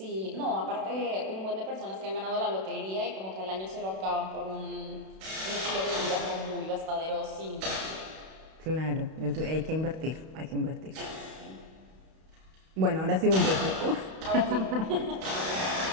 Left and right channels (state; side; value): late; left; 32 ms